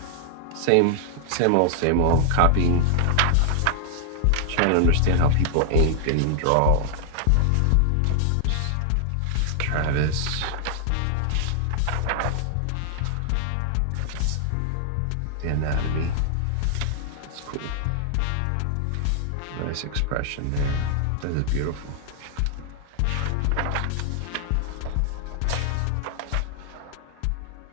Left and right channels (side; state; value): both; different; correlation 0.00